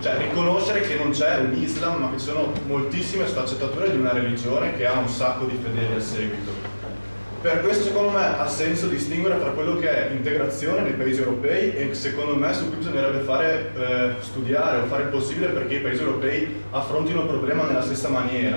cioè riconoscere che non c'è un Islam, ma che ci sono moltissime sfaccettature di una religione che ha un sacco di fedeli al seguito. Per questo secondo me ha senso distinguere tra quello che è integrazione nei paesi europei e secondo me su cui bisognerebbe fare studiare o fare il possibile perché i paesi europei affrontino il problema nella stessa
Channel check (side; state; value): both; inverted; correlation -1.00